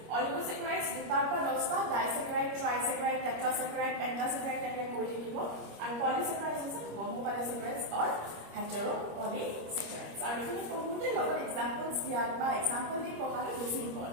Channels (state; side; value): late; left; 25 ms